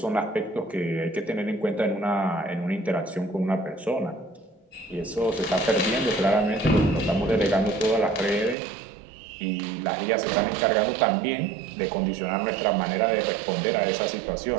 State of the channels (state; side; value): drops out; left; at 8.6 s